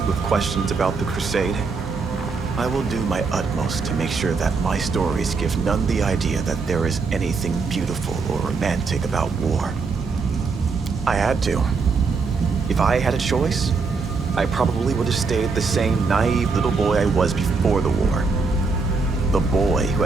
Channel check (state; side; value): quieter; left; 4.6 dB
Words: with questions about the crusade, I will do my utmost to make sure that my stories give none the idea that there is anything beautiful or romantic about war. I had to. If I had a choice, I probably would have stayed the same naive little boy I was before the war. The boy who